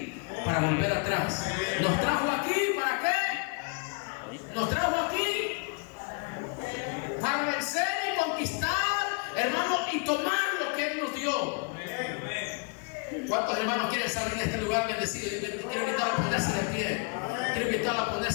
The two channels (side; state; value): right; quieter; 35.2 dB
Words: para volver atrás. Nos trajo aquí, ¿para qué? Nos trajo aquí para vencer y conquistar, hermano, y tomar lo que Él nos dio. ¿Cuántos hermanos quieren salir de este lugar bendecido? Quiero invitarlo a ponerse de pie. Quiero invitarlo a